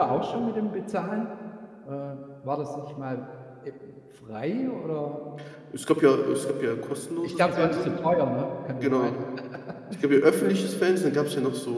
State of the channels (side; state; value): both; identical; correlation 1.00